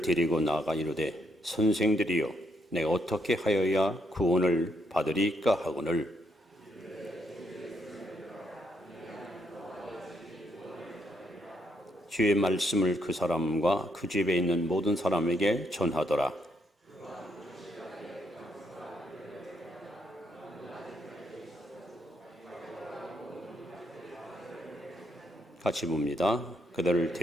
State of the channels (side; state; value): both; normal; correlation 0.75